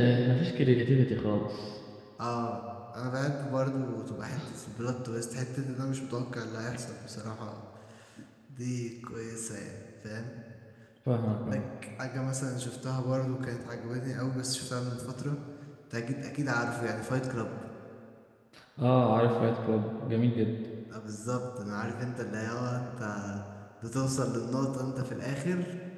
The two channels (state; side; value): identical; both; correlation 1.00